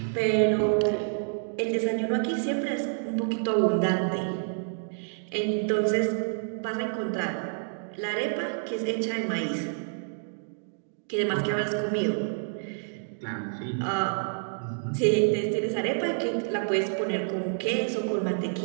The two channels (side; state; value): left; silent; digital silence